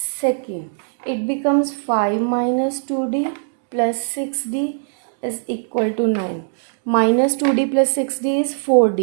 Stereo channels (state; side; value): silent; left; digital silence